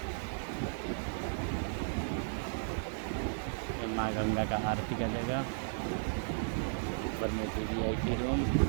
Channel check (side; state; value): left; silent; digital silence